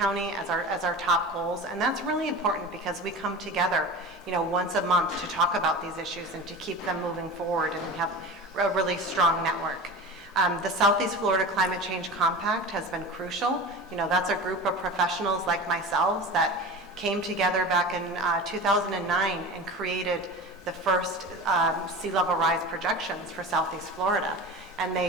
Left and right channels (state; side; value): normal; both; correlation 0.32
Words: as our top goals. And that's really important, because we come together, you know, once a month to talk about these issues and to keep them moving forward, and we have a really strong network. The Southeast Florida Climate Change Compact has been crucial. You know, that's a group of professionals like myself that came together back in 2009 and created the first sea level rise projections for Southeast Florida. And